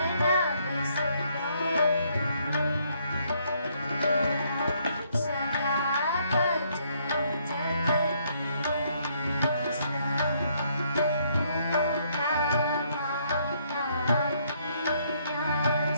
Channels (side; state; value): both; inverted; correlation -0.69